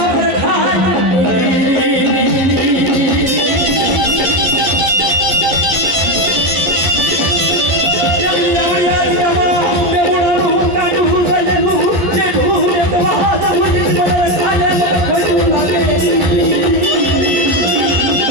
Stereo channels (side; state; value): left; late; 12 ms